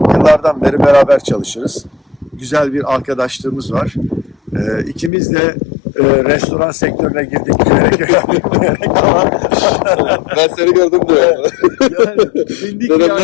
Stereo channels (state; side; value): drops out; right; at 5.1 s